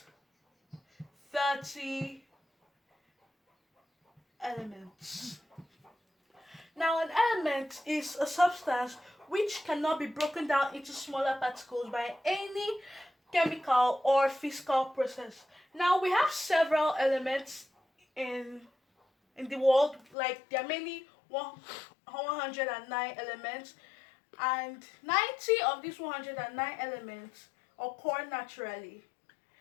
30 elements. Now, an element is a substance which cannot be broken down into smaller particles by any chemical or physical process. Now, we have several elements in the world, like there are many 109 elements, and 90 of these 109 elements occur naturally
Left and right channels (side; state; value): right; drops out; at 20.2 s